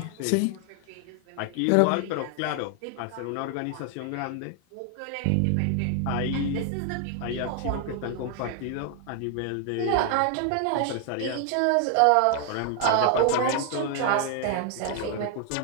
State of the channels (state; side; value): different; both; correlation 0.00